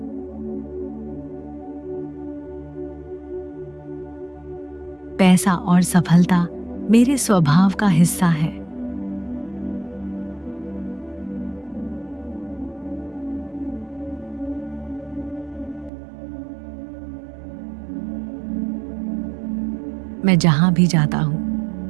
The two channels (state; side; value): drops out; left; at 15.9 s